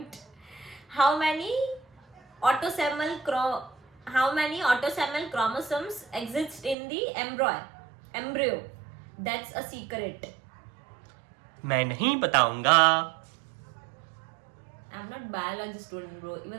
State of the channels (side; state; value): left; drops out; at 6.8 s